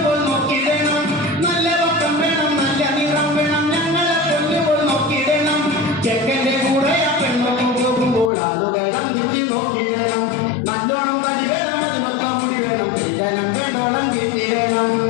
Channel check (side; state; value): right; drops out; at 8.3 s